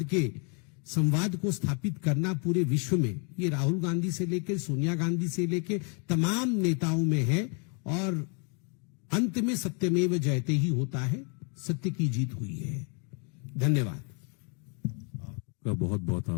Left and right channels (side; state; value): right; quieter; 38.1 dB